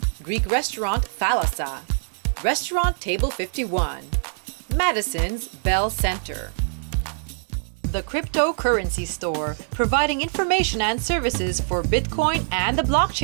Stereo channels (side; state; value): left; silent; digital silence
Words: Greek restaurant Thalassa, Restaurant Table 51, Madison's Bell Center, The Cryptocurrency Store, providing information and services for Bitcoin and the